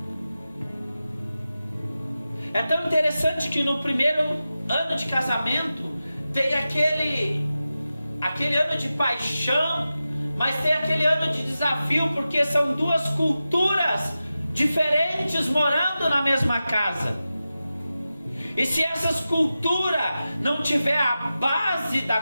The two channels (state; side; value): inverted; both; correlation -0.93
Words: É tão interessante que no primeiro ano de casamento tem aquele ano de paixão, mas tem aquele ano de desafio, porque são duas culturas diferentes morando na mesma casa. E se essas culturas não tiver a base da